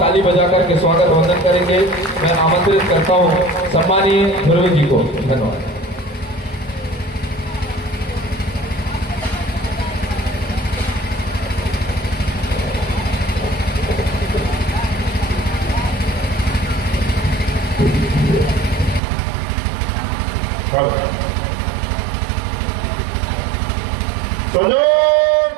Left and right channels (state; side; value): drops out; left; at 19.0 s